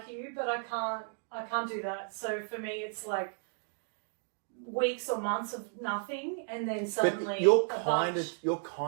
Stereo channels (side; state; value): left; silent; 55 dB below the other